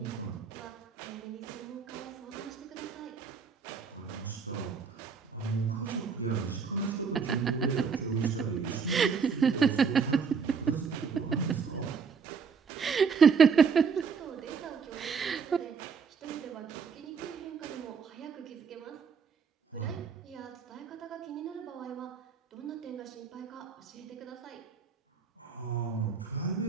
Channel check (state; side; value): quieter; left; 5.9 dB